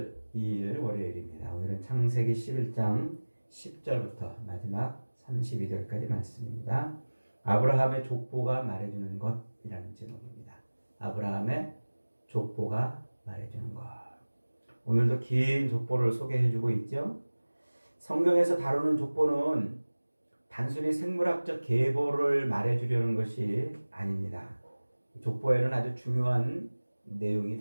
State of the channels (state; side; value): inverted; both; correlation -1.00